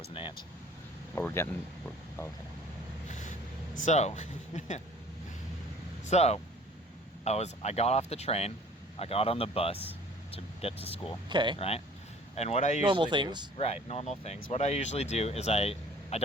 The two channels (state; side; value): normal; both; correlation 0.51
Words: an ant. But okay. So, I got off the train. I got on the bus to get to school. Okay. Right? And what I usually Normal things. Right, normal things. What I usually do is I